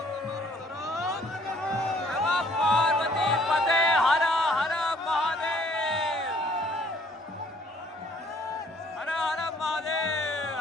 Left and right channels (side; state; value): both; normal; correlation 0.61